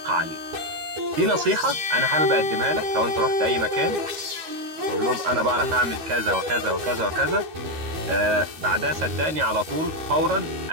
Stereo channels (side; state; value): left; late; 13 ms